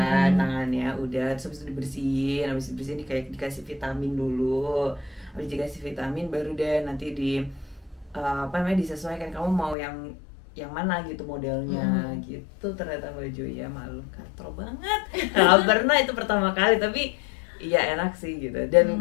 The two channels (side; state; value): right; drops out; at 9.8 s